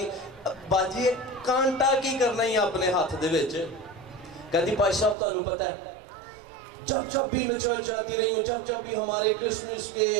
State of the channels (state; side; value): drops out; left; at 5.2 s